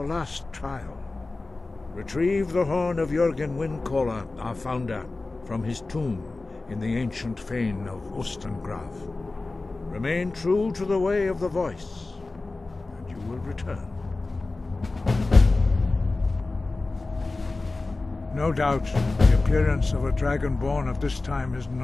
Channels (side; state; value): right; quieter; 3.4 dB